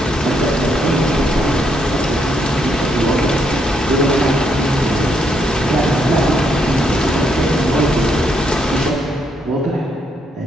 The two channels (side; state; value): both; normal; correlation 0.76